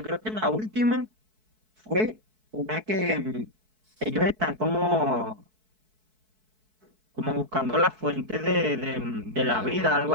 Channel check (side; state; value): left; late; 4.6 ms